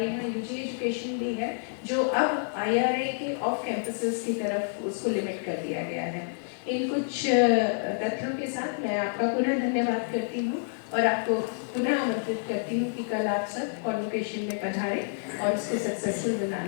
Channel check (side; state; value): right; silent; digital silence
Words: यहाँ UG एजुकेशन भी है, जो अब IRA के ऑफ कैंपसेस की तरफ उसको लिमिट कर दिया गया है। इन कुछ तथ्यों के साथ मैं आपका पुनः धन्यवाद करती हूँ और आपको पुनः आमंत्रित करती हूँ कि कल आप सब कॉन्वोकेशन में पधारें और इसको सक्सेसफुल